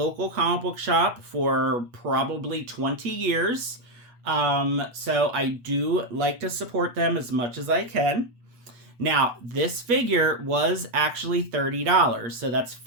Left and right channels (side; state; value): left; late; 8.2 ms